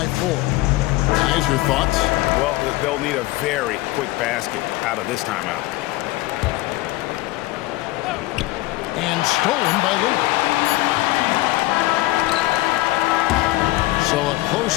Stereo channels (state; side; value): quieter; right; 18.7 dB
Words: 4. Guys, your thoughts? Well, they'll need a very quick basket out of this timeout. And stolen by Lillard. So a